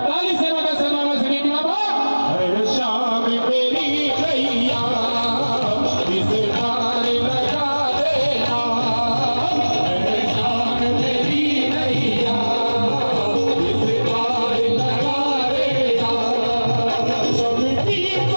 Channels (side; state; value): both; inverted; correlation -1.00